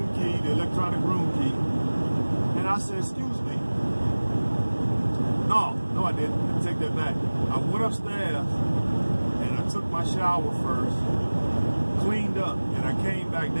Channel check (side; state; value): both; inverted; correlation -1.00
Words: key, the electronic room key. And I said, excuse me. No, I didn't. Let me take that back. I went upstairs and I took my shower first, cleaned up, and I came back